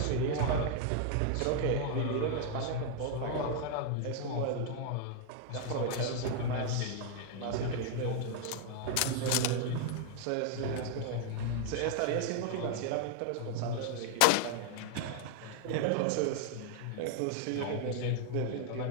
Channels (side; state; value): both; different; correlation 0.00